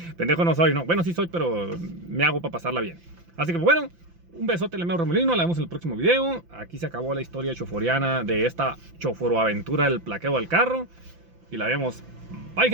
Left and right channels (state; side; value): late; left; 5.9 ms